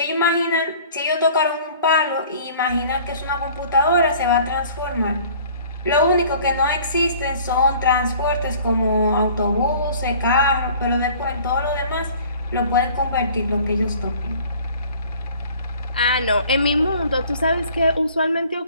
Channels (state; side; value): inverted; both; correlation -0.50